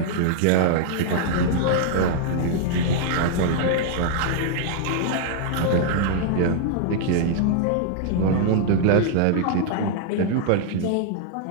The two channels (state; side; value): different; both; correlation -0.01